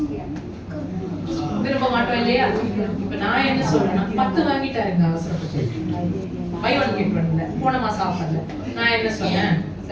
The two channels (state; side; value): identical; both; correlation 1.00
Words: விரும்ப மாட்டோம் இல்லையா? இப்ப நான் என்ன சொல்றேன்னா 10 வாங்கிட்டாருங்க அவசரப்பட்டு, buy one get one ல போன மாசம் ஆஃபர்ல. நான் என்ன சொன்னேன்,